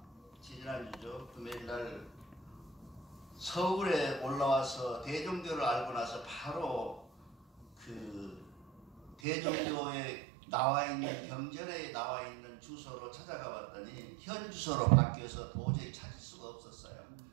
지난주죠. 금요일날 서울에 올라와서 대종교를 알고 나서 바로 그 대종교에 나와 있는 경전에 나와 있는 주소로 찾아가 봤더니 현 주소로 바뀌어서 도저히 찾을 수가 없었어요.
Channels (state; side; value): drops out; left; at 9.2 s